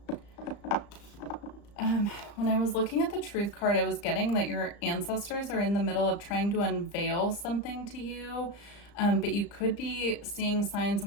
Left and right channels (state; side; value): late; right; 35 ms